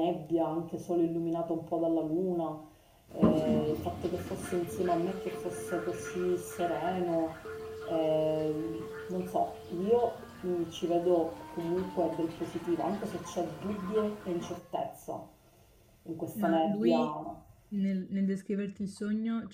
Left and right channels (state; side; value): identical; both; correlation 1.00